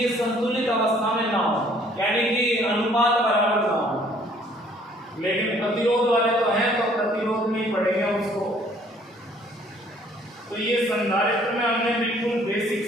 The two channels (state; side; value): normal; both; correlation 0.59